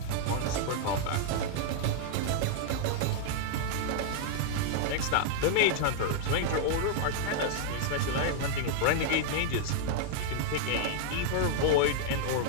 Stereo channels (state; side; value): different; both; correlation 0.00